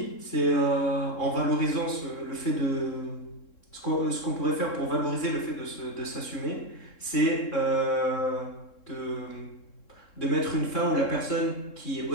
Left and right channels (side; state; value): right; late; 3.7 ms